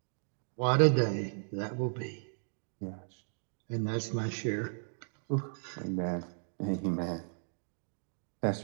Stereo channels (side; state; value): left; silent; digital silence